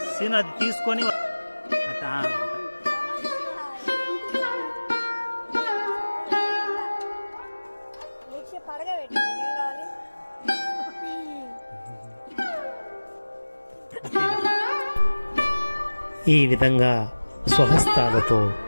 సీన్ అది తీసుకొని ఈ విధంగా స్వహస్తాలతో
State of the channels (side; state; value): both; inverted; correlation -1.00